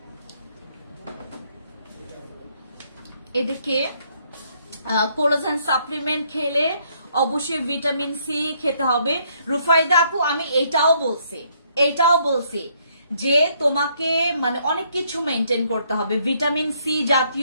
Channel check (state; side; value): inverted; both; correlation -0.69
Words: এদেরকে কোলাজেন সাপ্লিমেন্ট খেলে অবশ্যই ভিটামিন সি খেতে হবে। রুফাইদা আপু আমি এটাও বলছি যে তোমাকে মানে অনেক কিছু মেনটেন করতে হবে, ভিটামিন সি